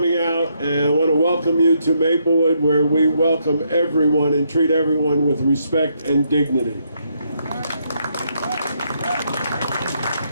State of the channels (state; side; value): inverted; both; correlation -0.75